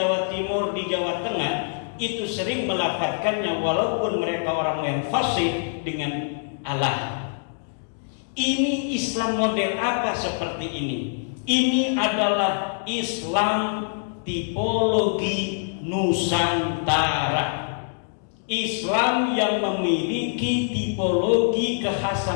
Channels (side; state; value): right; silent; digital silence